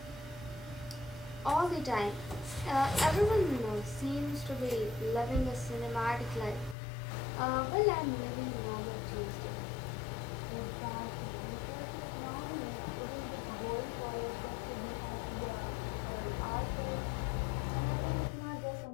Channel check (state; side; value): drops out; right; at 6.8 s